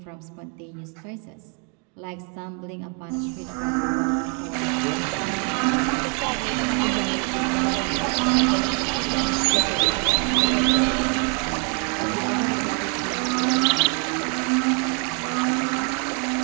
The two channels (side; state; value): left; quieter; 37.9 dB